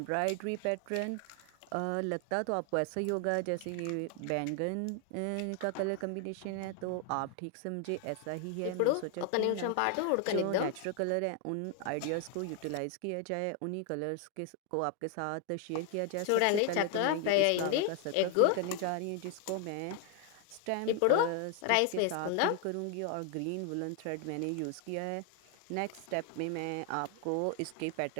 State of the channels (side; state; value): both; different; correlation 0.00